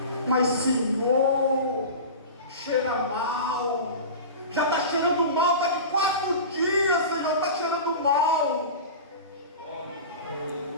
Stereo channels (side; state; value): both; inverted; correlation -0.31